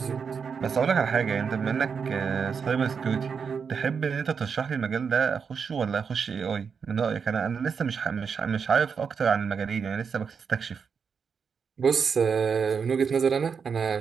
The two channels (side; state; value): left; quieter; 6.2 dB